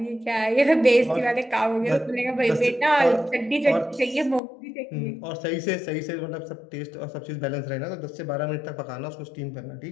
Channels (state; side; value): drops out; right; at 4.4 s